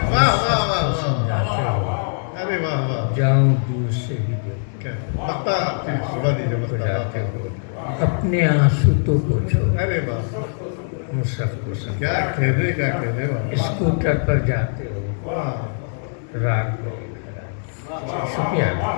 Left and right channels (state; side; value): silent; right; 64 dB below the other